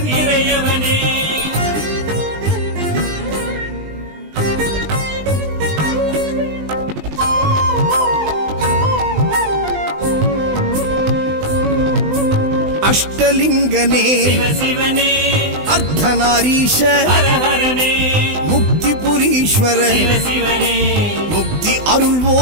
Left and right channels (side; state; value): left; late; 20 ms